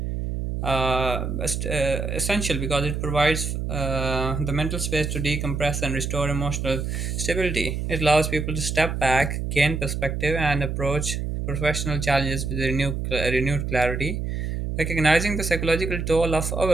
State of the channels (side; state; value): right; noise; hum, 3 dB below the sound